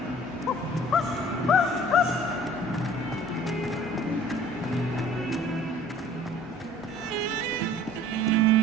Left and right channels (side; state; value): both; normal; correlation 0.50